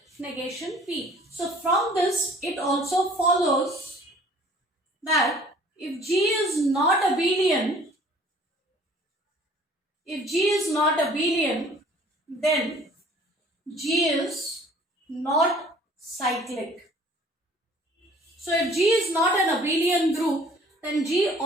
negation P. So from this, it also follows that if G is not abelian, then G is not cyclic. So if G is not an abelian group, then G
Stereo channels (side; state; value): both; normal; correlation 0.52